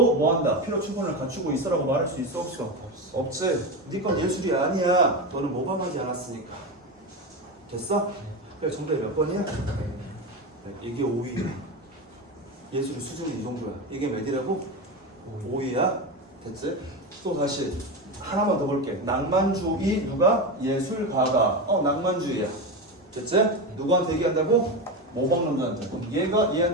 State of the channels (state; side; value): normal; both; correlation 0.18